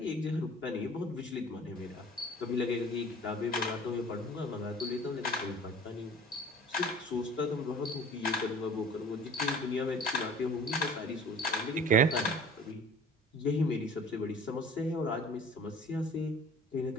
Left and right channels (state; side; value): normal; both; correlation 0.45